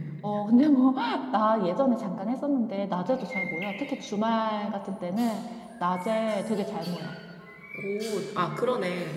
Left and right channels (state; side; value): identical; both; correlation 1.00